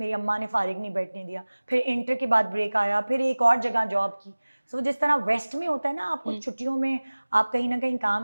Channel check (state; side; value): inverted; both; correlation -1.00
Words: अम्मा ने फारिग नहीं बैठने दिया। फिर इंटर के बाद ब्रेक आया, फिर एक और जगह जॉब की। सो जिस तरह वेस्ट में होता है ना, आपको छुट्टियों में आप कहीं ना कहीं